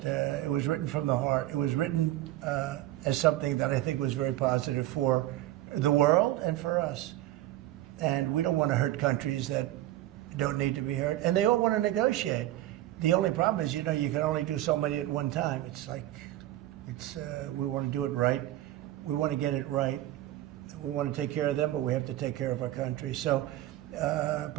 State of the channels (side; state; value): left; quieter; 14.7 dB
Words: it was written from the heart. It was written as something that I think was very positive for the world and for us. And we don't want to hurt countries that don't need to be hurt. And they all want to negotiate. The only problem is, you can only do so many at one time. We want to do it right. We want to get it right. We want to take care of them, but we have to take care of our country. So,